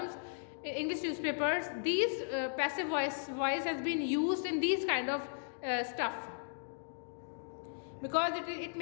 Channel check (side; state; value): right; silent; digital silence